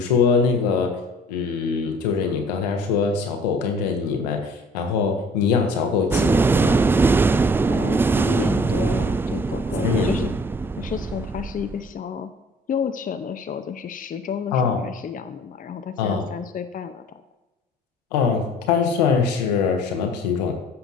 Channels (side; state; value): both; normal; correlation 0.52